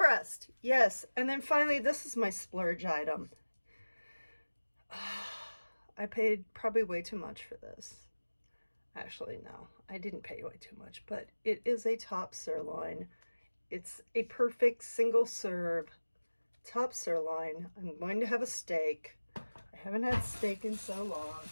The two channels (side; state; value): both; inverted; correlation -1.00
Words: yes. And then finally, this is my splurge item. I paid probably way too much for this. Actually, no, I didn't pay way too much, but it is a top sirloin. It's a perfect single serve top sirloin. I'm going to have a steak. I haven't had steak in so long.